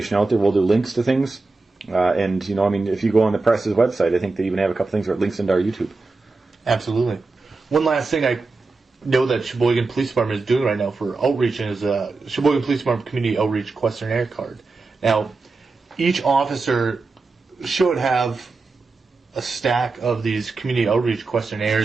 out there. We'll do links to things. If you go on the press's website, I think they even have a couple things where it links into our YouTube. Absolutely. One last thing I know that Sheboygan Police Department is doing right now for outreach is a Sheboygan Police Department Community Outreach Questionnaire card. Now, each officer should have a stack of these community outreach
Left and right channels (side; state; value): left; quieter; 3.7 dB